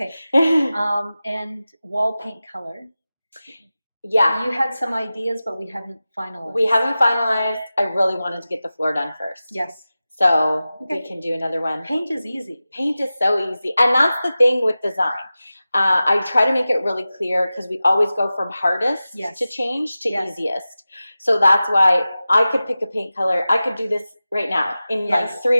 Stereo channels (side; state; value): both; inverted; correlation -0.95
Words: And wall paint color. Yeah. You had some ideas, but we haven't finalized. We haven't finalized. I really wanted to get the floor done first. Yes. So Okay. we can do another one. Paint is easy. Paint is so easy. And that's the thing with design. I try to make it really clear because we always go from hardest to change to easiest. So that's why I could pick a paint color. I could do this right now in like